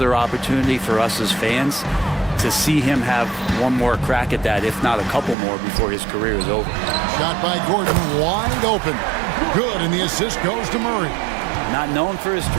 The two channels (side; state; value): left; drops out; at 5.4 s